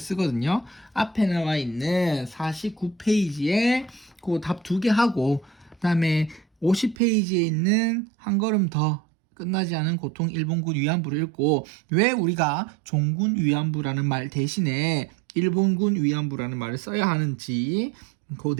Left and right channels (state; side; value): drops out; left; at 7.0 s